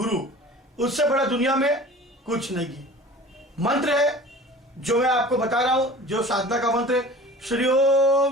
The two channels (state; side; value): normal; both; correlation 0.41